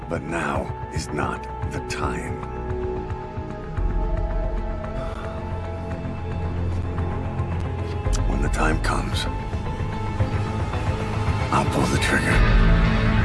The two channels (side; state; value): both; identical; correlation 1.00